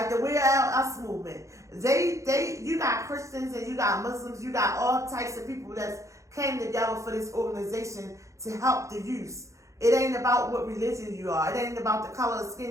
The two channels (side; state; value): left; late; 0.15 ms